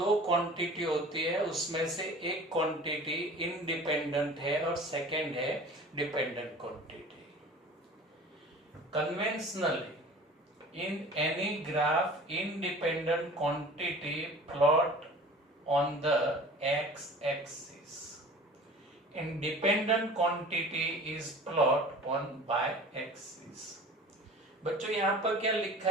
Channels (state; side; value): normal; both; correlation 0.42